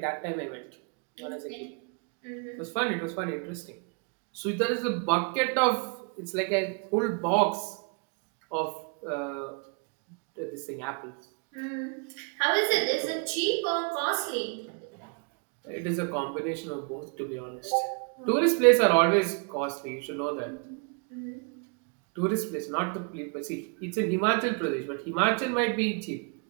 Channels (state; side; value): quieter; left; 37.8 dB